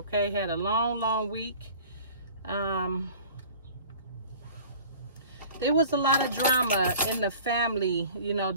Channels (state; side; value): inverted; both; correlation -0.45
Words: had a long week. There was a lot of drama in the family, you know,